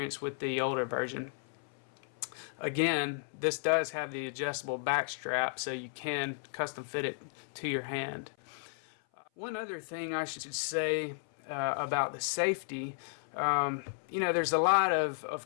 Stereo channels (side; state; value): right; silent; 55 dB below the other